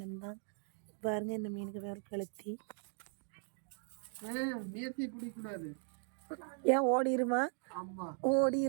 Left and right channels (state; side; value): silent; left; 52 dB below the other